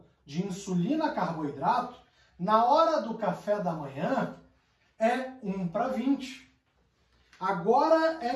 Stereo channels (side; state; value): both; identical; correlation 1.00